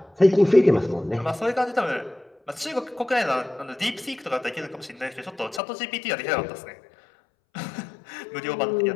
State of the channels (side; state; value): right; drops out; at 5.6 s